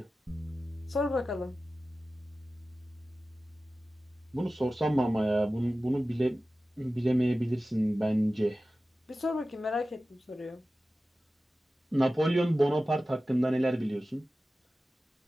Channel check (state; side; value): normal; both; correlation 0.95